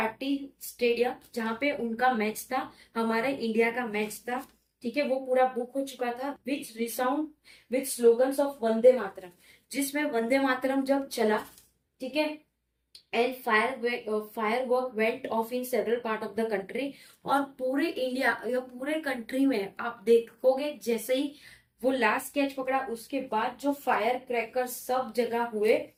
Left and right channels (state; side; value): identical; both; correlation 1.00